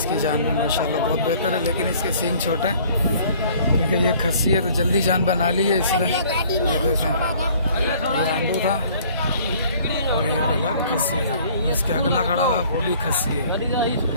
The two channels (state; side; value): inverted; both; correlation -0.55